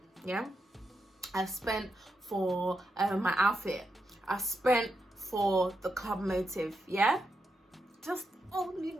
yeah? I've spent for my outfit. I spent for the club motive, yeah? Just only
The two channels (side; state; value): both; normal; correlation 0.84